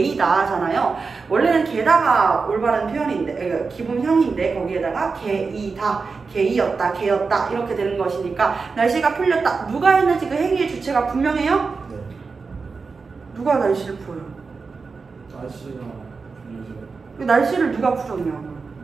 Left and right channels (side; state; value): left; quieter; 4.6 dB